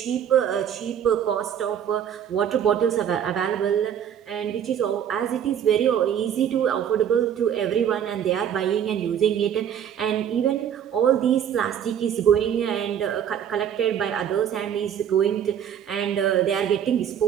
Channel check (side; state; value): left; quieter; 9.1 dB